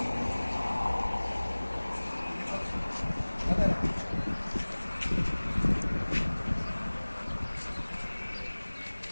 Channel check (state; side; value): inverted; both; correlation -1.00